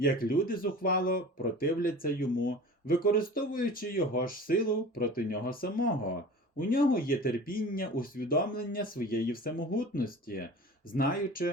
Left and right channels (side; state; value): both; normal; correlation 0.39